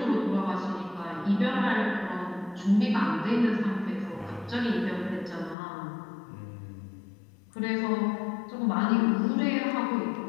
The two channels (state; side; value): drops out; right; at 5.6 s